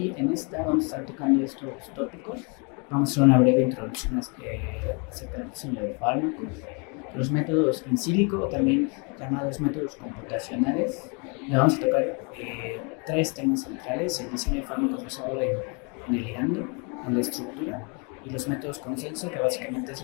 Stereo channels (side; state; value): right; quieter; 34.1 dB